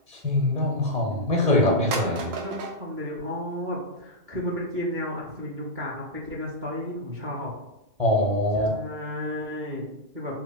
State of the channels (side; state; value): left; late; 3.0 ms